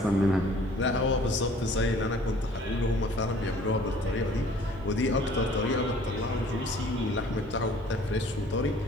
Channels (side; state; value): both; normal; correlation 0.53